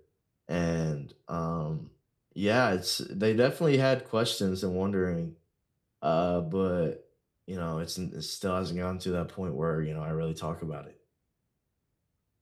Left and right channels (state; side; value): identical; both; correlation 1.00